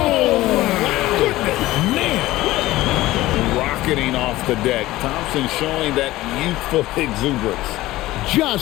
goodness, man. Rocketing off the deck. Thompson showing that youthful exuberance.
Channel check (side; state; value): right; quieter; 17.1 dB